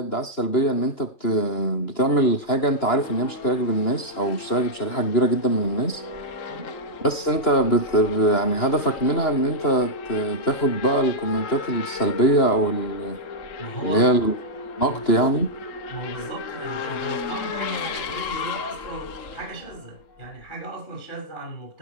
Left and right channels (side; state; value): right; late; 2.9 ms